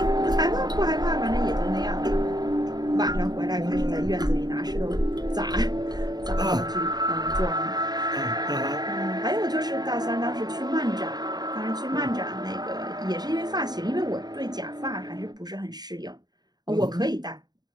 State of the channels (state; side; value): late; left; 0.20 ms